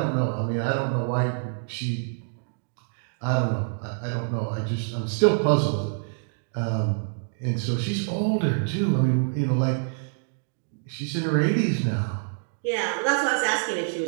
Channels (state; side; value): silent; left; digital silence